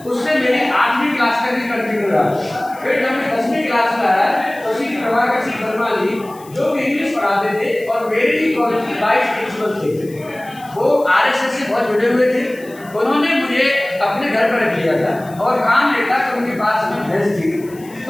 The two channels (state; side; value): noise; left; hiss, 23 dB below the sound